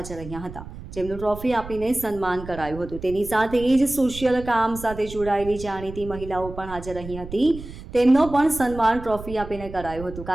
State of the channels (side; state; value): right; noise; rumble, 13 dB below the sound